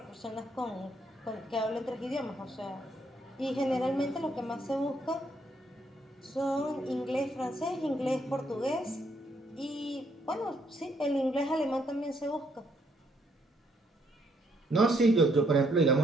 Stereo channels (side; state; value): both; normal; correlation 0.72